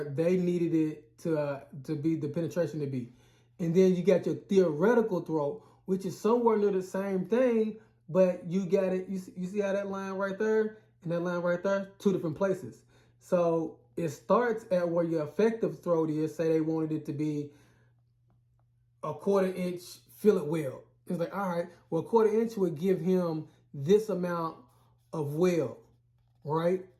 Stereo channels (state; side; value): identical; both; correlation 1.00